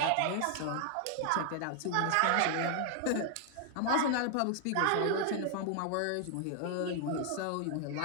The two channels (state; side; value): different; both; correlation 0.00